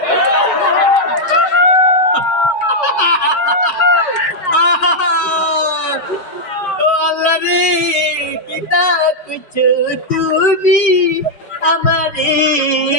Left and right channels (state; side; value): late; right; 5.2 ms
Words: ও আল্লাহ রে কিতা কুছো তুমি আমারে